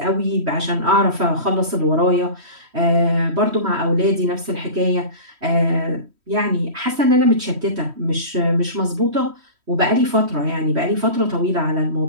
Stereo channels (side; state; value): left; late; 3.1 ms